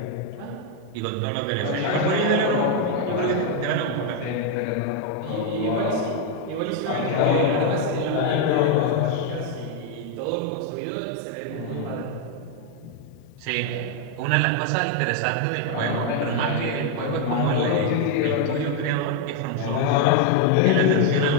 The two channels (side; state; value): both; different; correlation 0.01